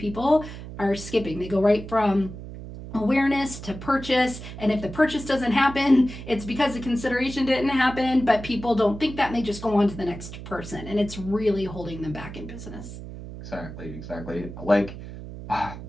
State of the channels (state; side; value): noise; right; hum, 11 dB below the sound